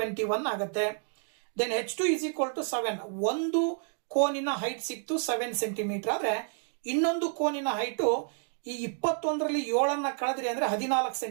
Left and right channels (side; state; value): left; silent; 57 dB below the other